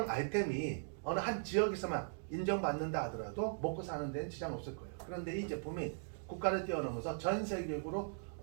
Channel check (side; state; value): left; silent; digital silence